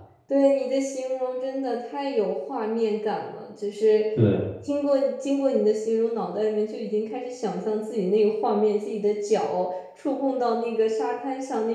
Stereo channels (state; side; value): identical; both; correlation 1.00